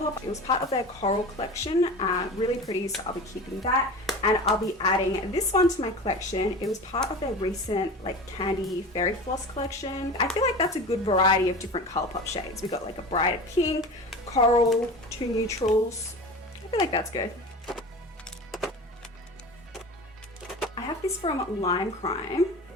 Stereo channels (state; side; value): normal; both; correlation 0.33